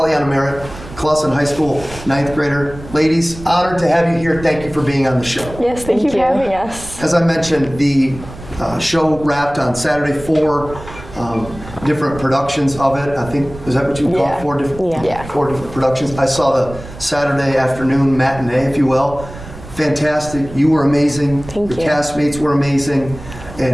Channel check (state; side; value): noise; right; rumble, 15 dB below the sound